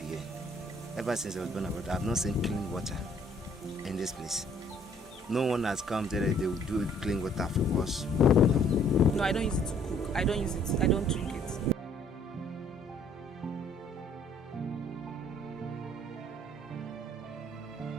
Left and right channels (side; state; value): both; normal; correlation 0.61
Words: Ever since I was born and brought up, I have not seen clean water in this place. No one has come there, they will do clean water for us. No, I don't use it to cook. I don't use it. I don't drink it.